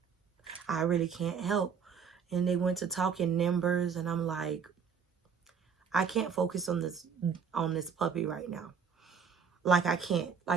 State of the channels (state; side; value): quieter; left; 6.4 dB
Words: I really can't help. And they went to talking numbers, and I'm like, I can't focus on this puppy right now. Like I can't.